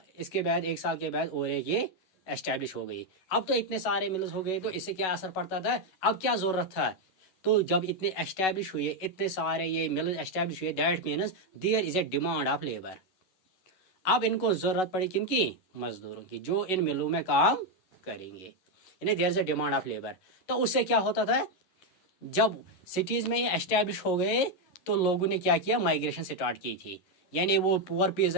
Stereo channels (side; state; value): right; late; 11 ms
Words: बाद एक साल के बाद और एक ये एस्टैब्लिश हो गई। अब तो इतने सारे मिल्स हो गए, तो इससे क्या असर पड़ता था? अब क्या ज़रूरत था? तो जब इतने एस्टैब्लिश हुए, इतने सारे ये मिल्स एस्टैब्लिश हुए, that means there is a demand of labour. अब इनको ज़रूरत पड़ी किनकी? मजदूरों की, जो इन मिलों में काम करेंगे। यानी there is a demand of labour. तो उससे क्या होता था? जब सिटीज़ में ये एस्टैब्लिश हो गए, तो लोगों ने क्या किया? माइग्रेशन स्टार्ट की थी। यानी वो पुअर